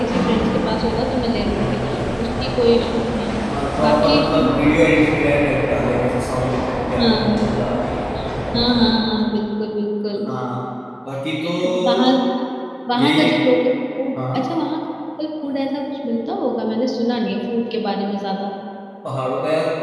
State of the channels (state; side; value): identical; both; correlation 1.00